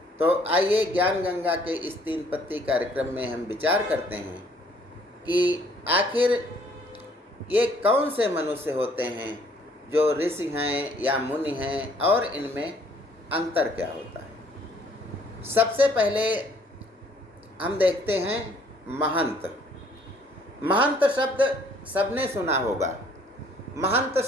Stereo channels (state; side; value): normal; both; correlation 0.61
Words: तो आइए ज्ञान गंगा के इस 3 पत्ती कार्यक्रम में हम विचार करते हैं कि आखिर ये कौन से मनुष्य होते हैं जो ऋषि हैं या मुनि हैं और इनमें अंतर क्या होता है। सबसे पहले हम देखते हैं महंत। महंत शब्द सबने सुना होगा। महंत